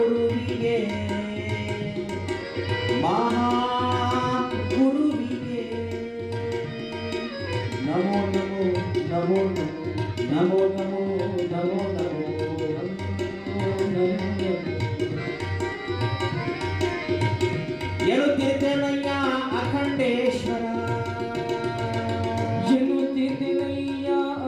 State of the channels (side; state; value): both; identical; correlation 1.00